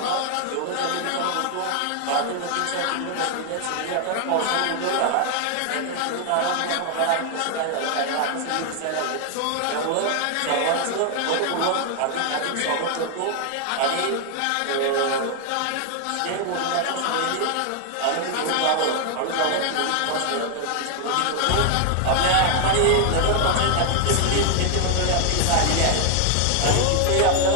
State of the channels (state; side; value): different; both; correlation 0.00